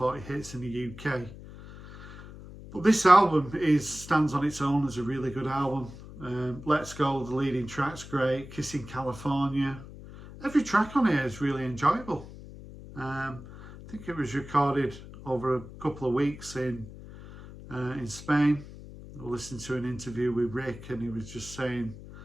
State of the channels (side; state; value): left; noise; hum, 15 dB below the sound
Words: hits in the UK. But this album stands on its own as a really good album. Let's Go, the leading track's great. Kissing California. Every track on here is really enjoyable. I think it was recorded over a couple of weeks in Spain. I listened to an interview with Rick, and he was just saying